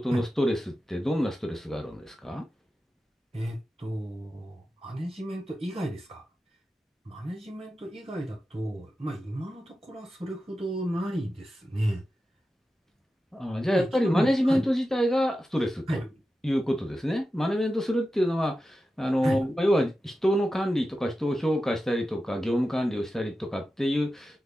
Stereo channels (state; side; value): normal; both; correlation 0.92